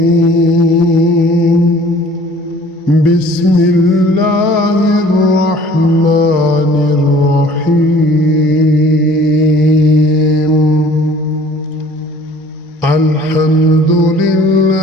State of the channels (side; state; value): both; normal; correlation 0.51